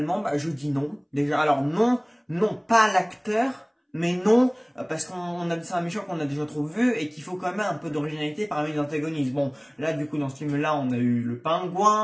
je dis non. Déjà, alors non, pas l'acteur. Mais non, parce c'est un méchant qu'on a déjà trop vu et qu'il faut quand même un peu d'originalité parmi les antagonistes. Bon, là du coup dans ce film-là, on a eu le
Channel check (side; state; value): both; identical; correlation 1.00